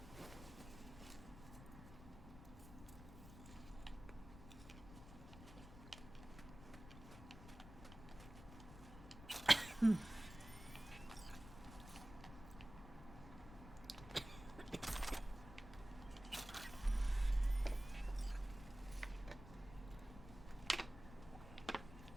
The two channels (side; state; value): left; noise; rumble, 14 dB below the sound